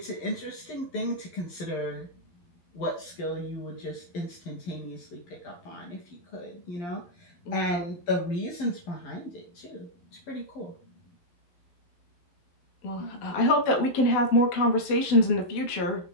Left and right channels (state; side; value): late; right; 11 ms